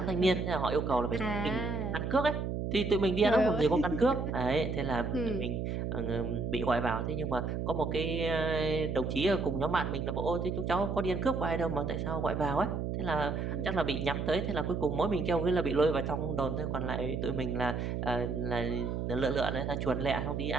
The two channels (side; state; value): right; noise; hum, 2 dB below the sound